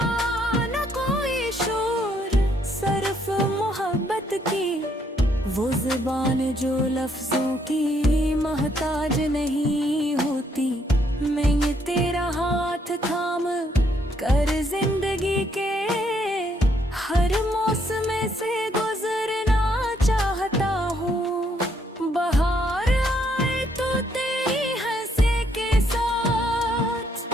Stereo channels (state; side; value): normal; both; correlation 0.71